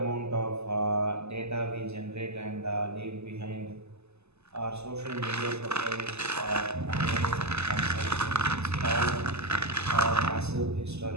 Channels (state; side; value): late; left; 0.80 ms